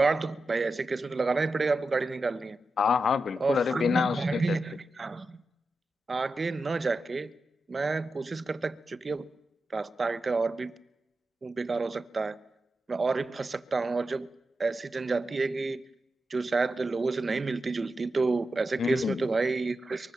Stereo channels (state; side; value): normal; both; correlation 0.90